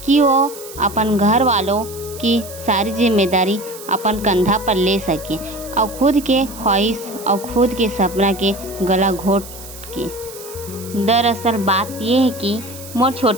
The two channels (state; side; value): noise; right; hiss, 15 dB below the sound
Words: कि वो अपन घर वालों की सारी जिम्मेदारी अपन कंधा पर ले सके और खुद के ख्वाहिश और खुद के सपना के गला घोट के। दरअसल बात ये है कि मोर